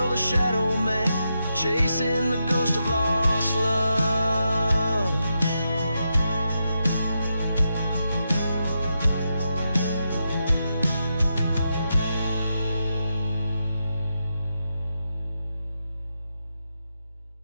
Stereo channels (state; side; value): inverted; both; correlation -0.85